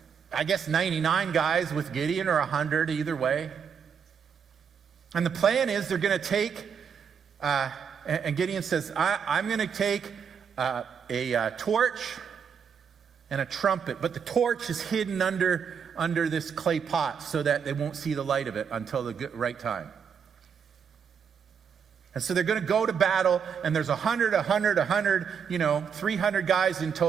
I guess, 99 guys with Gideon, or 100, either way. And the plan is they're going to take, and Gideon says, I'm going to take a torch and a trumpet, but the torch is hidden under this clay pot so that they won't see the light of it until the right time. And so they're going to go to battle, and there's 100, 300 guys in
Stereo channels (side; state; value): left; quieter; 7.0 dB